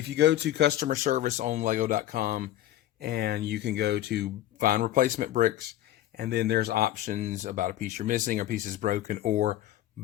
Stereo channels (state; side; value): quieter; right; 13.7 dB